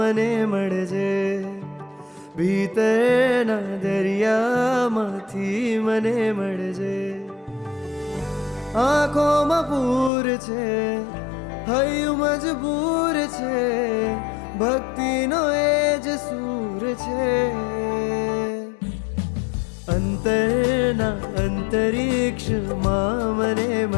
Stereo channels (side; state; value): right; drops out; at 10.1 s